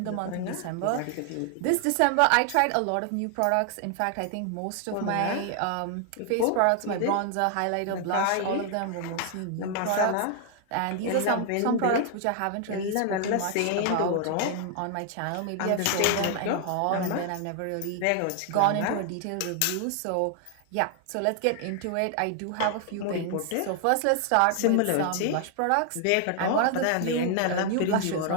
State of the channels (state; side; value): different; both; correlation 0.00